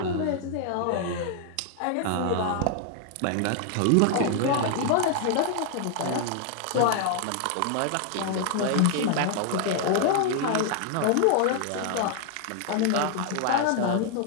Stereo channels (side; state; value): both; different; correlation 0.00